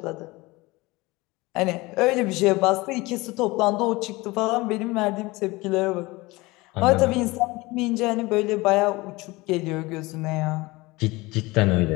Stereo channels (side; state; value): right; quieter; 22.1 dB